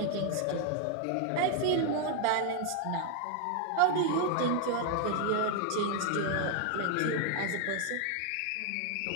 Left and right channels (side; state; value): both; different; correlation 0.00